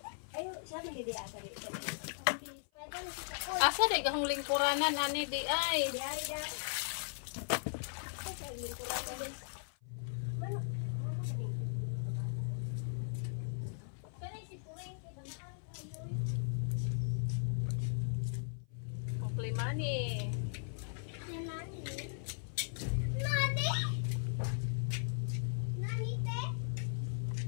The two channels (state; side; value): silent; right; 53 dB below the other